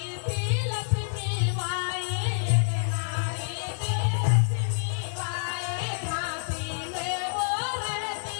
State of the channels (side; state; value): right; silent; digital silence